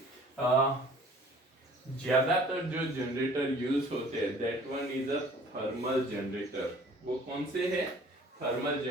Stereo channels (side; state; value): both; normal; correlation 0.51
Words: ज्यादातर जो जनरेटर यूज होते हैं that one is a thermal generator. वो कौन से है? थर्मल